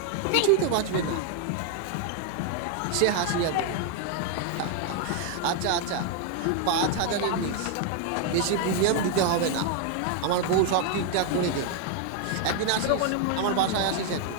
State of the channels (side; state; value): both; different; correlation 0.00